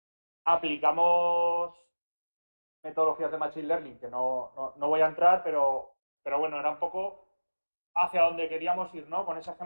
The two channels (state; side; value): inverted; both; correlation -1.00